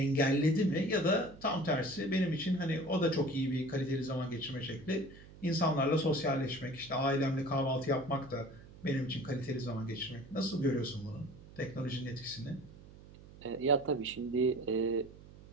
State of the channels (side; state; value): right; noise; hum, 19 dB below the sound